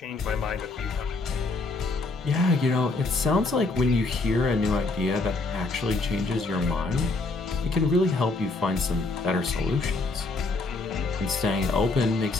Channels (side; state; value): right; quieter; 3.4 dB